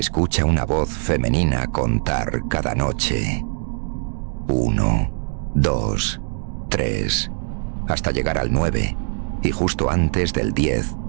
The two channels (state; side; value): silent; left; 56 dB below the other